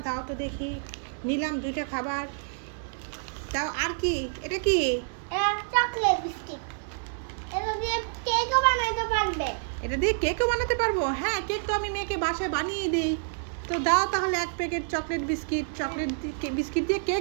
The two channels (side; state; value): left; silent; 56 dB below the other